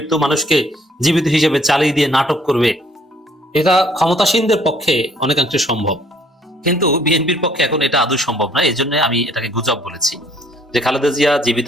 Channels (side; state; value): both; normal; correlation 0.61